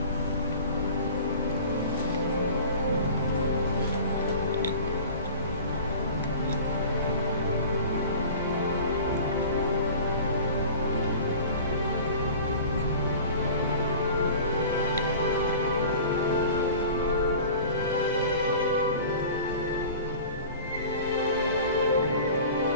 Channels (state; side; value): inverted; both; correlation -0.40